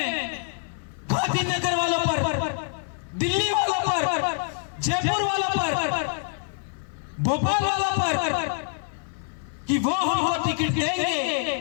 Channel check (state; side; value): silent; right; 61 dB below the other